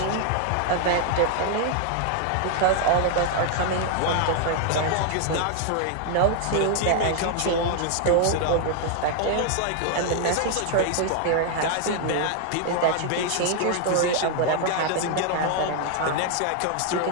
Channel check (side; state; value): both; different; correlation 0.00